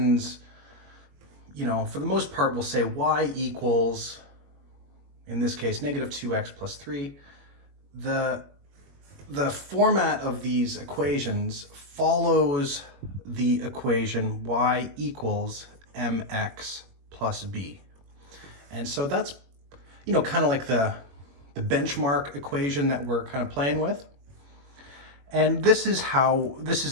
for the most part, will say y equals, in this case, negative 2x plus 3. The format of these equations follows the equation y equals mx plus b. And so that's, kind of like the benchmark equation that we're kind of playing with. And this is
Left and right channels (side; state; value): left; late; 21 ms